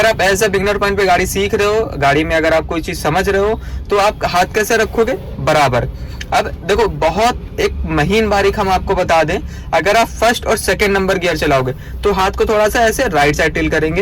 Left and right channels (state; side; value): identical; both; correlation 1.00